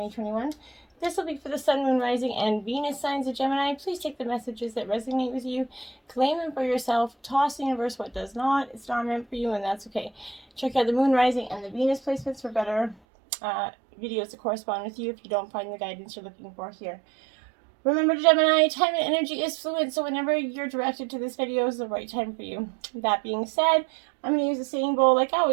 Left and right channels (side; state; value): left; drops out; at 13.0 s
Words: This will be for the Sun, Moon, Rising, and Venus signs of Gemini. Please take the messages that resonate with you, claim them for yourself, toss the universe what does not. It's not meant for you, and that's okay. Check out the Moon, Rising, and the Venus placements for better videos to correspond with you if you don't find the guidance you're looking for here. Remember, Gemini, time and energy is fluid, so whenever you're directed to this video is the right time for you. That being said, I'm going to use the singing bowl like